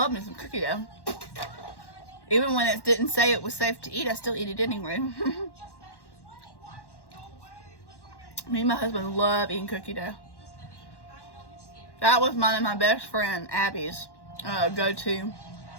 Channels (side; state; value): right; late; 1.1 ms